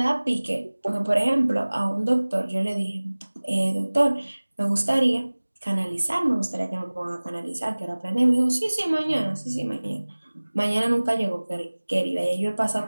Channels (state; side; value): inverted; both; correlation -1.00